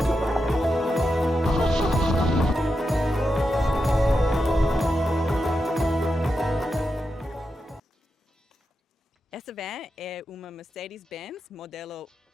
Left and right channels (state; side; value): normal; both; correlation 0.87